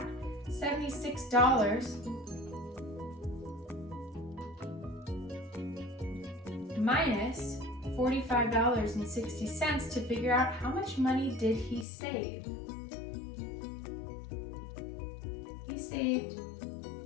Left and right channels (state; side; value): drops out; right; at 11.9 s